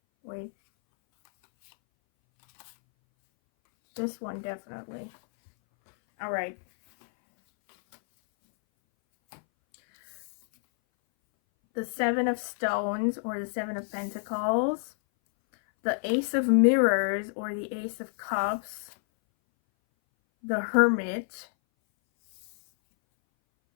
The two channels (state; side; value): silent; right; 59 dB below the other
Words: wait. This one definitely. All right. The Seven of Stones, or the Seven of Pentacles. The Ace of Mirrors, or the Ace of Cups. The Hermit.